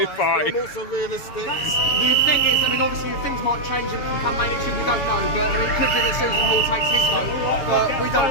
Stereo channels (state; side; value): late; right; 7.1 ms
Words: Party. I'm also realistic. The thing is, obviously things might change and come May next year, we don't know, but it could be that Susan Hall takes his vote, but we don't